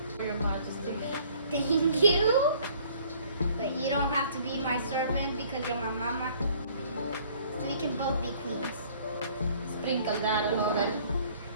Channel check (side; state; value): both; inverted; correlation -0.57